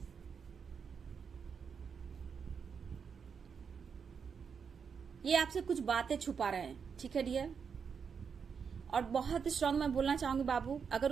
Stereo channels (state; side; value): quieter; left; 6.4 dB